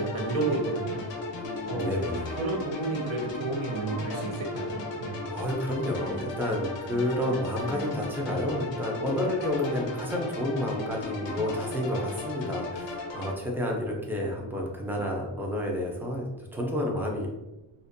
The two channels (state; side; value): noise; right; rumble, 27 dB below the sound